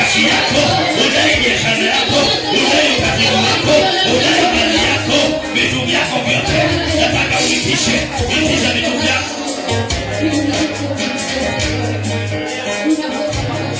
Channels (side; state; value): both; identical; correlation 1.00